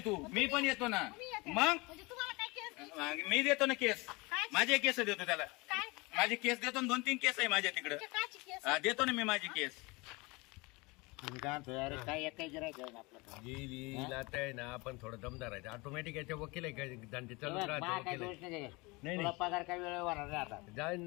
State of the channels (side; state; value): right; quieter; 25.3 dB